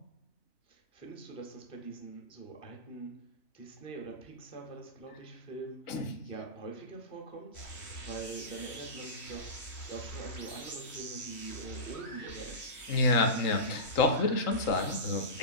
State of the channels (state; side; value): late; right; 3.1 ms